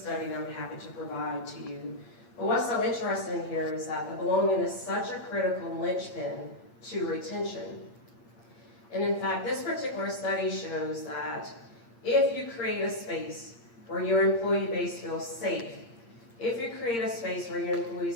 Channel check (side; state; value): right; late; 8.7 ms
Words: that I'm happy to provide to you. But what's so interesting here is that the belonging is such a critical linchpin to retention. And in fact, this particular study shows that if you create a space where your employee base feels safe, if you create a space where your